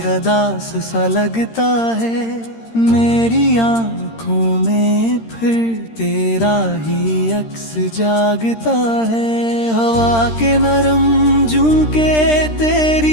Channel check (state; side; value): late; right; 13 ms